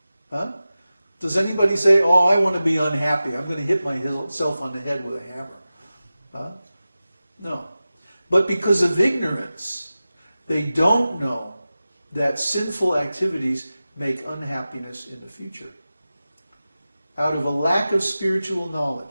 Does anybody say, oh, I want to be unhappy, I'm going to hit myself on the head with a hammer? No. But because of ignorance, they don't know that sinful activities make unhappiness in the future. Out of a lack of spiritual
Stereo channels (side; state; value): both; inverted; correlation -0.95